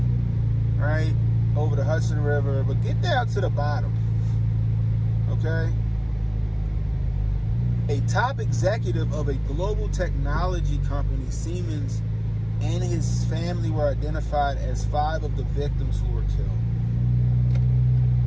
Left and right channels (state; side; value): identical; both; correlation 1.00